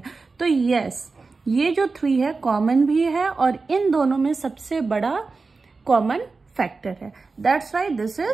तो यस ये जो 3 है कॉमन भी है और इन दोनों में सबसे बड़ा कॉमन फैक्टर है. That's why this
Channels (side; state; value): left; quieter; 4.1 dB